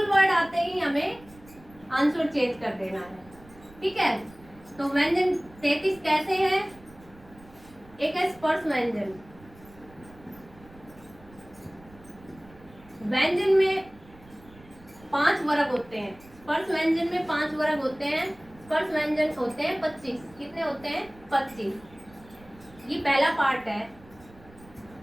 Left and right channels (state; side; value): noise; right; rumble, 23 dB below the sound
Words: वर्ड आते ही हमें आंसर चेंज कर देना है, ठीक है। तो व्यंजन 33 कैसे हैं? एक है स्पर्श व्यंजन। व्यंजन में 5 वर्ग होते हैं। स्पर्श व्यंजन में 5 वर्ग होते हैं। स्पर्श व्यंजन होते हैं 25। कितने होते हैं? 25। ये पहला पार्ट है।